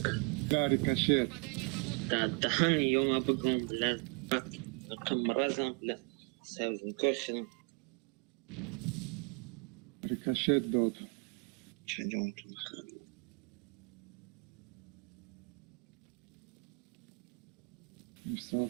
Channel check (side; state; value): left; quieter; 31.0 dB